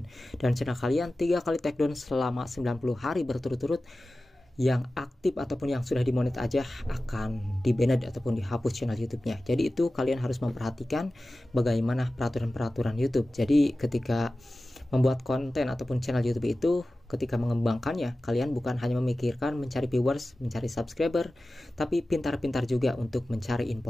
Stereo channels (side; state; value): both; normal; correlation 0.95